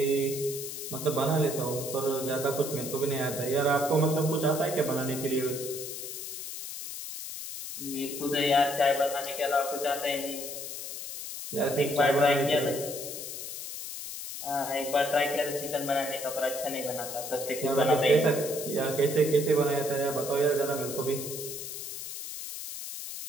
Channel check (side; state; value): left; noise; hiss, 8 dB below the sound